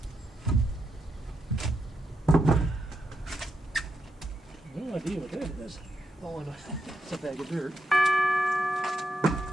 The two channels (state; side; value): normal; both; correlation 0.84